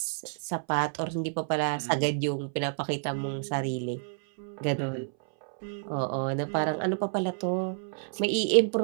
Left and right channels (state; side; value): silent; left; 58 dB below the other